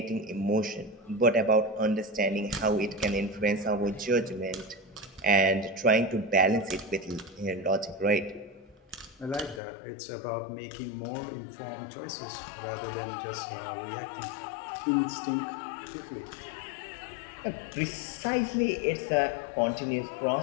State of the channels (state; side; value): drops out; right; at 9.6 s